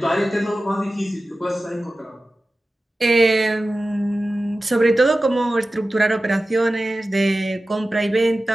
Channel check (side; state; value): both; normal; correlation 0.95